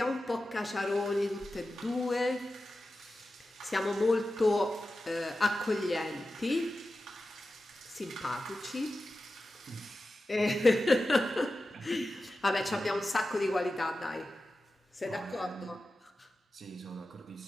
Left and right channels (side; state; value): both; normal; correlation 0.93